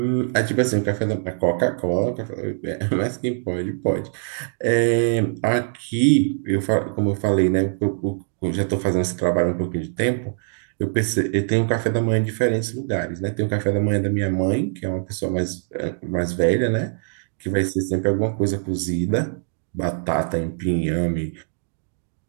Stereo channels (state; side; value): silent; left; digital silence